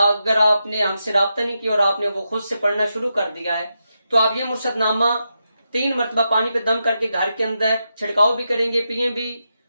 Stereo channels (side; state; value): both; inverted; correlation -0.86